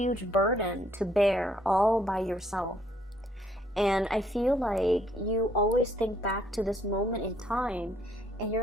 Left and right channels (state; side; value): normal; both; correlation 0.66